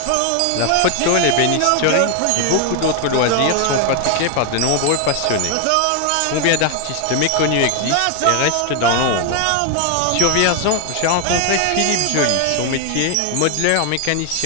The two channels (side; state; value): both; different; correlation 0.01